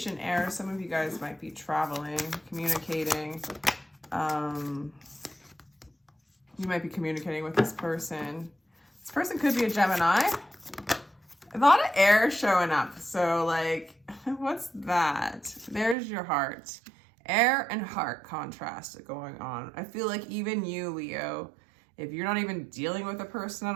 error. Some of you guys might be traveling, communicating. You might be communicating with this person. This person could be a Gemini. A lot of air showing up. So like, what's that? There's your heart. Air and heart contrast going on. I feel like even you, Leo, if you're not even dealing with a person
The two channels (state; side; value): drops out; left; at 16.0 s